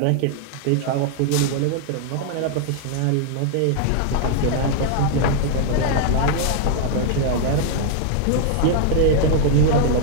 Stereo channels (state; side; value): different; both; correlation 0.00